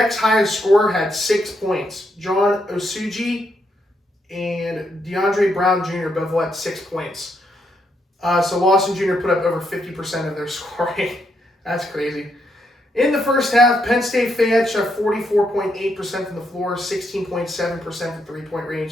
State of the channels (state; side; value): normal; both; correlation 0.78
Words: highest scorer had 6 points. John Osuji and DeAndre Brown Jr. both had 6 points. So Lawson Jr. put up over 50% of their scoring. That's crazy. In the first half, Penn State Fayette shot 44.8% from the floor, 16.7% from three-point